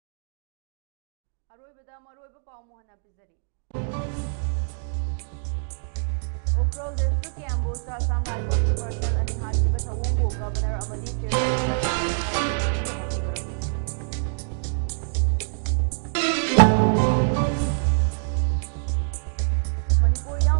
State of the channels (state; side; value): silent; left; digital silence